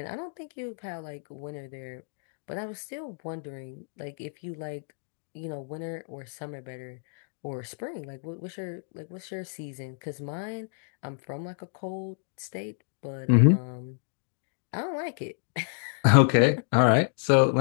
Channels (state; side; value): silent; right; digital silence